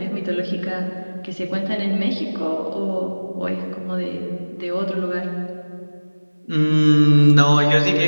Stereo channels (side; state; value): both; inverted; correlation -1.00